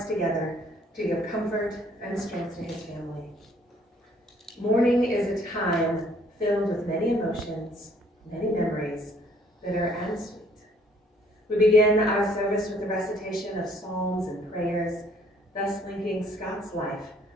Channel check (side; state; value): both; normal; correlation 0.62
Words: together to give comfort and strength to his family. Mourning is a time filled with many emotions, many memories, bitter and sweet. We begin our service with the recitation of psalms and prayers, thus linking Scott's life